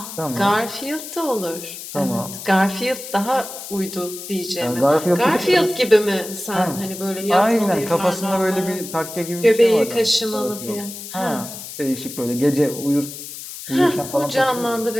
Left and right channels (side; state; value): left; noise; hiss, 11 dB below the sound